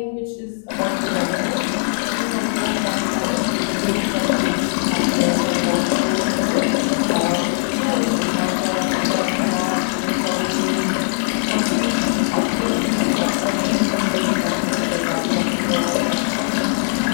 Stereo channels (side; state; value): right; silent; digital silence